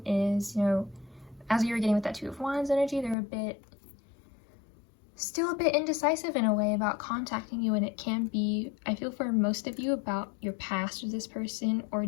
is, you know, as you were getting with that Two of Wands energy, they're still a bit indecisive in a way about contacting you, and it can be, I feel for most of you, about your past with this person or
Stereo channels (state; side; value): drops out; right; at 3.2 s